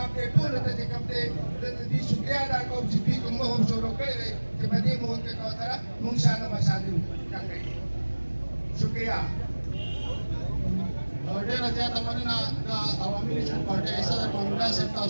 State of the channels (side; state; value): both; inverted; correlation -1.00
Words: دې ټولو ته چې کوم دی د دې شکریه ادا کوم چې دوی کوم مهم شروع کړی دی چې په دې مهم کې سره موږ شانه بشانه وکړو شکریه. ډېره زیاته مننه د عوامي نیشنل پارټۍ صدر مانولا صاحب